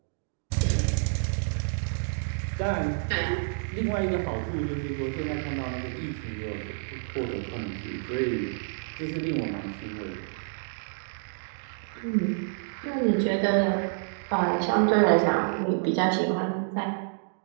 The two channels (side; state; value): left; silent; digital silence